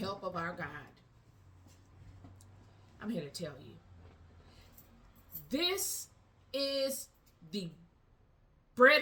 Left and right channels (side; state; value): both; identical; correlation 1.00